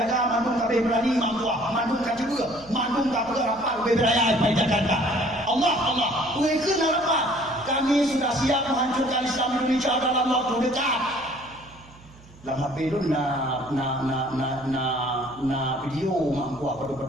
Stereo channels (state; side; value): noise; right; hum, 23 dB below the sound